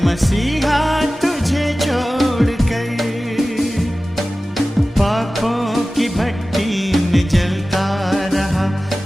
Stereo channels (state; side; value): normal; both; correlation 0.96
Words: मसीहा तुझे छोड़कर। पापों की भट्टी में जलता रहा,